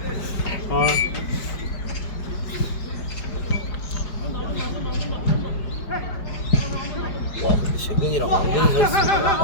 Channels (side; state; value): right; late; 5.0 ms